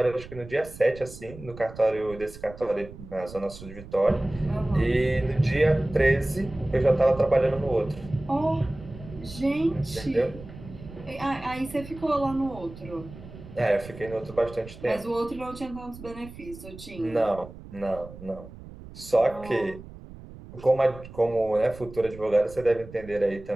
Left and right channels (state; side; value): noise; right; rumble, 16 dB below the sound